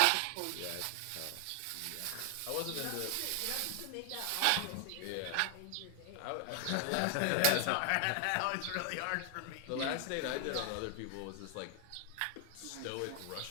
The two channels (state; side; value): different; both; correlation 0.00